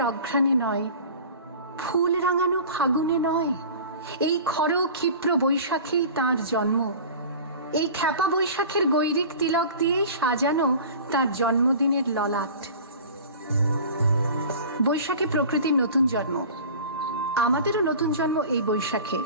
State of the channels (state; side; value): inverted; both; correlation -0.40